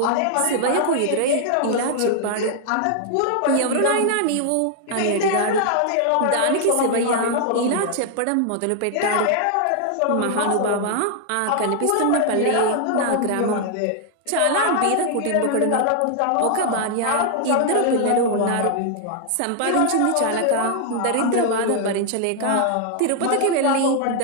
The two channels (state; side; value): different; both; correlation 0.00